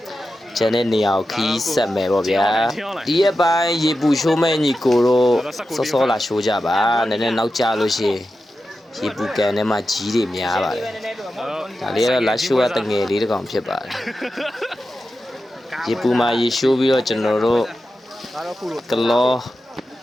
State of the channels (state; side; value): normal; both; correlation 0.91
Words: ကျန်တဲ့နေရာကိုခီးဆက်မယ်ပေါ့ဗျာဒီရက်ပိုင်းရေပူရှိုးမဲ့ညီကိုတို့စောစောလာရှိုးကြပါနည်းနည်းနောက်ကျလို့ရှိရင်ရေပူကန်ထဲမှာကြီးတွေများပါတယ်ဒါလေးကတော့လာရှိုးရတငယ်လေးတစ်ကောင်ဖြစ်ပါတယ်ရေပူမှာရေရှိုးပြီးတော့ကျွန်တော်တို့ကလော